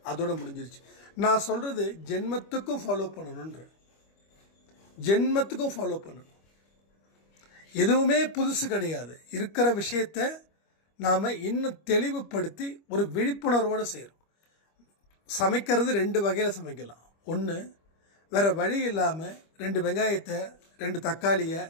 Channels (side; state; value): right; late; 25 ms